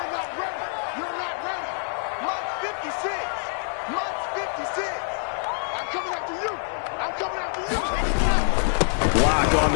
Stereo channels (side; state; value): right; silent; 59 dB below the other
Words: ready. You're not ready. March 56. March 56. I'm coming after you. I'm coming after you. Block on